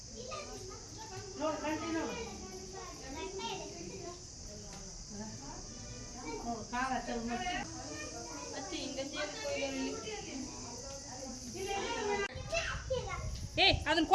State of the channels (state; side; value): identical; both; correlation 1.00